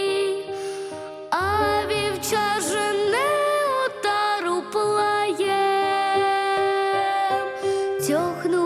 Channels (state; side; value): identical; both; correlation 1.00